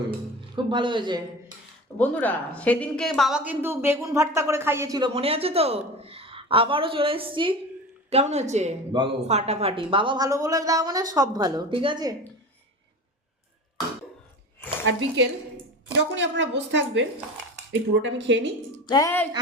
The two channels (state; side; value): normal; both; correlation 0.31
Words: খুব ভালো হয়েছে। বন্ধুরা, সেদিনকে বাবা কিন্তু বেগুন ভর্তা করে খাইয়েছিল, মনে আছে তো? আবারও চলে এসেছি। কেমন হয়েছে? ফাটাফাটি। বাবা ভালো বলে দাও মানে সব ভালো, ঠিক আছে। আর বিকেল যখনই আপনারা বসে থাকবেন, এই পুরোটা আমি খেয়ে নিই।